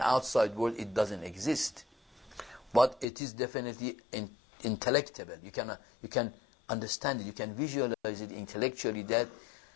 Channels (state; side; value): drops out; right; at 3.1 s